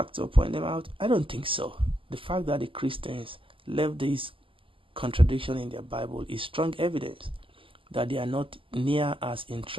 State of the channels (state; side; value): late; left; 0.25 ms